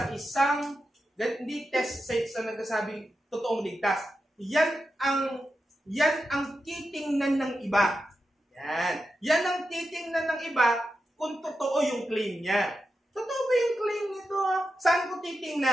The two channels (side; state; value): both; normal; correlation 0.89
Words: isang, hindi test sa nagsasabing totoong ligtas. Yan ang titingnan ng iba. Yan ang titingnan ng iba kung totoo yung claim niya. Totoo ba yung claim nito? Saan ko